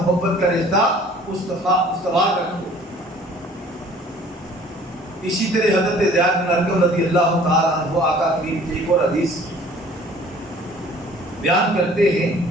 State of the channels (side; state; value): both; normal; correlation 0.52